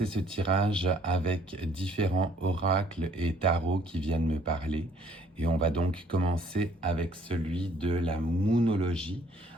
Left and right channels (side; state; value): both; normal; correlation 0.60